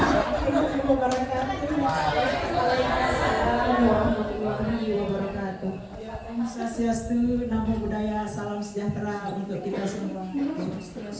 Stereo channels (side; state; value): both; identical; correlation 1.00